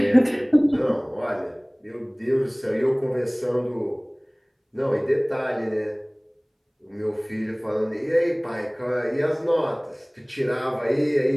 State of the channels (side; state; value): both; identical; correlation 1.00